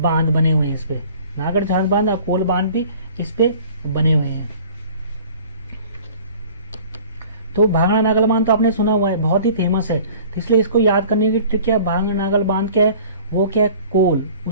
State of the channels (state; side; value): inverted; both; correlation -0.47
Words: बने हुए हैं इस पे, नागर झांझ बांध और कोल बांध भी इस पे बने हुए हैं। तो भांगड़ा नागल बांध तो आपने सुना हुआ है, बहुत ही फेमस है, तो इसलिए इसको याद करने की ट्रिक क्या है, भांगड़ा नागल बांध क्या है, वो क्या है, कोल,